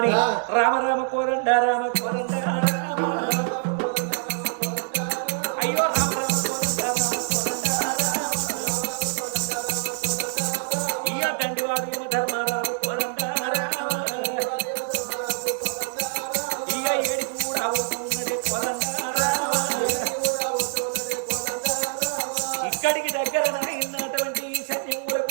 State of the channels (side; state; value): left; silent; digital silence